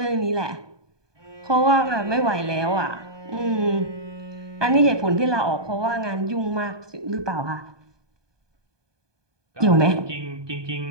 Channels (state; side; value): late; left; 1.2 ms